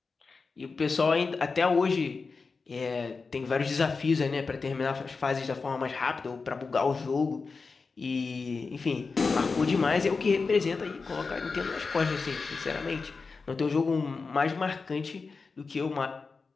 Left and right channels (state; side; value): quieter; right; 4.5 dB